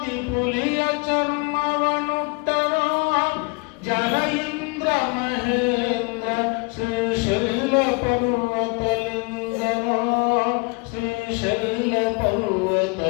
ಪುಲಿಯ ಚರ್ಮವನುಟ್ಟನೋ ಜಲ ಇಂದ್ರ ಮಹೇಂದ್ರ ಶ್ರೀಶೈಲ ಪರ್ವತಲಿಂಗನೋ ಶ್ರೀಶೈಲ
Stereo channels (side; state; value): right; quieter; 29.8 dB